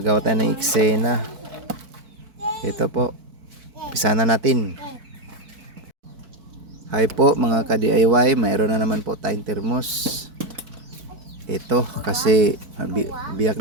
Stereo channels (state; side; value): late; left; 4.5 ms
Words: tayo ng eksena. Ito po, umpisa na natin. Hi po mga ka-DIY, mayroon na naman po tayong thermos. Ito, kasi biyak